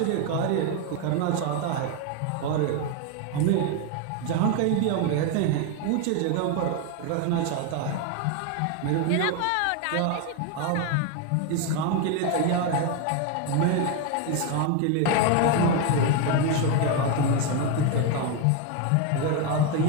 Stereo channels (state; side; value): different; both; correlation 0.02